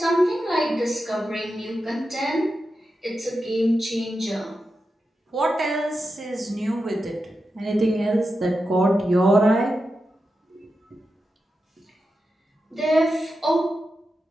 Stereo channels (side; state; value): both; normal; correlation 0.90